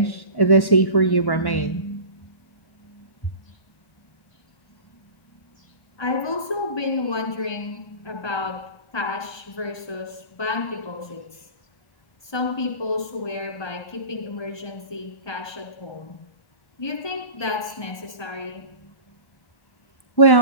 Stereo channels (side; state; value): right; late; 1.2 ms